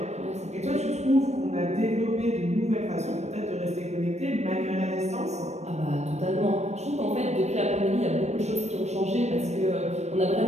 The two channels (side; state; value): left; late; 0.32 ms